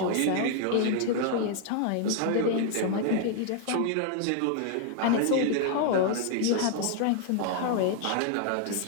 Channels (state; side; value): different; both; correlation 0.00